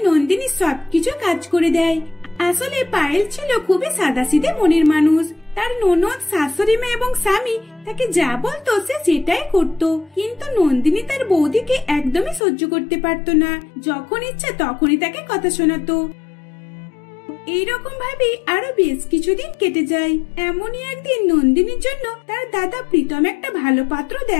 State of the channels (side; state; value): right; drops out; at 12.4 s